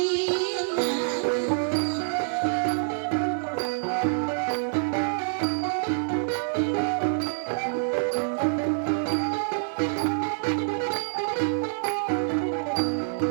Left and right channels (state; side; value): silent; left; 57 dB below the other